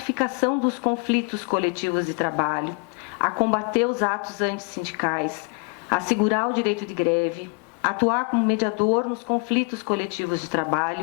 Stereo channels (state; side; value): quieter; right; 34.8 dB